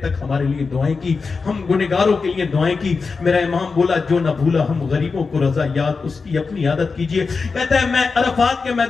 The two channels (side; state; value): right; quieter; 4.6 dB